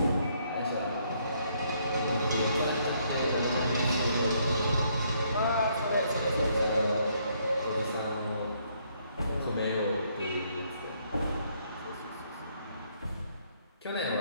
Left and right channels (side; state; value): both; inverted; correlation -0.70